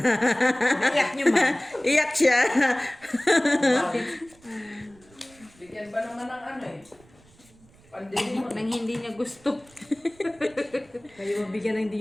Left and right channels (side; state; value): right; noise; rumble, 28 dB below the sound